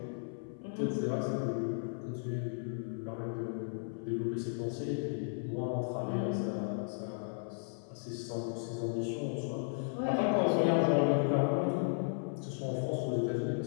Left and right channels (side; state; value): right; silent; 54 dB below the other